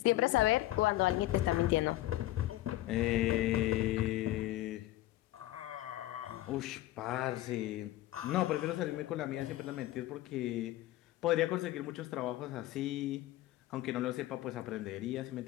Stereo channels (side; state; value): right; quieter; 15.8 dB